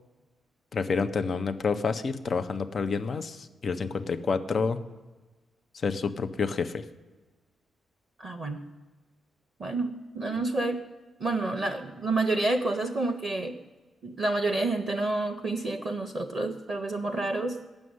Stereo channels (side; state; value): both; normal; correlation 0.81